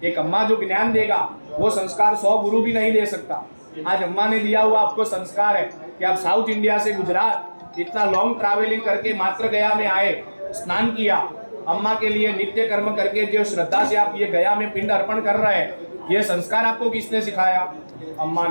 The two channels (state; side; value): inverted; both; correlation -1.00